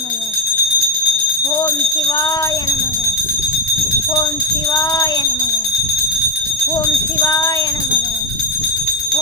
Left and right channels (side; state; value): both; normal; correlation 0.12